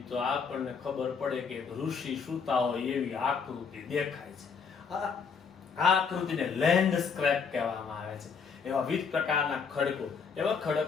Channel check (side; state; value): right; quieter; 5.9 dB